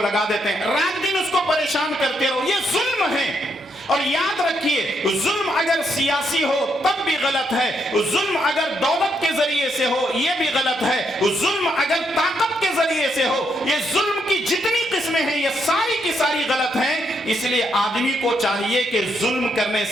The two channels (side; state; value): both; normal; correlation 0.77